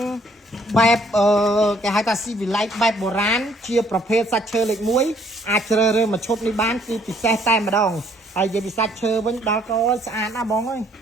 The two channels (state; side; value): normal; both; correlation 0.63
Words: បែបគេហៅថាស៊ីវិល័យបែបបុរាណជាប្រភេទសាច់ឈើលេខ1អាចជ្រើសរើសមួយឈុតនេះបានគឺពិសេសតែម្ដងហើយនិយាយពីសាច់ឈើវិញដល់ក៏ស្អាតណាបងអើយ